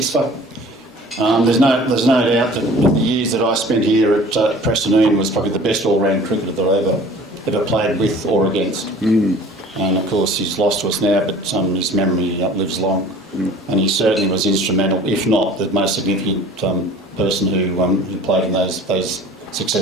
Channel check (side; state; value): both; normal; correlation 0.46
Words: for. There's no doubt that the years that I spent here at Preston, Ian was probably the best all-round cricketer that I ever played with or against. And of course he's lost to us now, but his memory lives long. And he certainly was instrumental, if not the most significant person who played in those